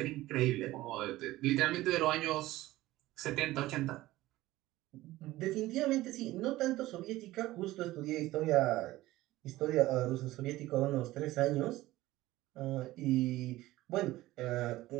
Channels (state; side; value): quieter; left; 17.1 dB